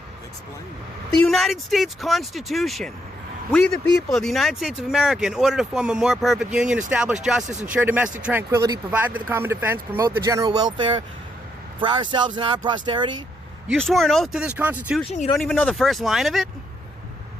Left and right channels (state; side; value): normal; both; correlation 0.76